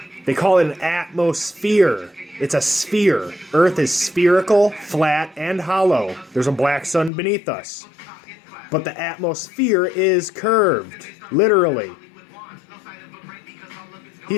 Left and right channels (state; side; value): drops out; right; at 7.1 s